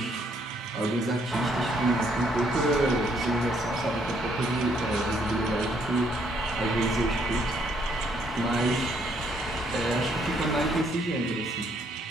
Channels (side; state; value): both; normal; correlation 0.69